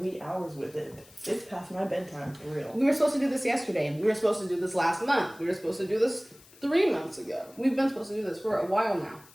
hours with it. It's past my bedtime, for real. We were supposed to do this yesterday. We were supposed to do this last month. We were supposed to do this 3 months ago. We've been supposed to do this for a while now.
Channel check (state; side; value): noise; left; hiss, 24 dB below the sound